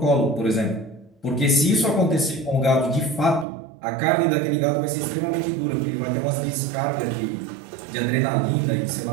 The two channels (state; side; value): drops out; left; at 3.5 s